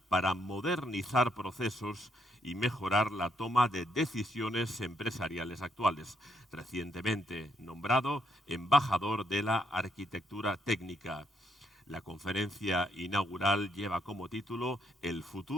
para modernizar procesos y mejorar la toma de decisiones empresariales actuales. Recientemente nombrado embajador de la arquitectura técnica. La conferencia inaugural lleva como título El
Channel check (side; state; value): both; normal; correlation 0.74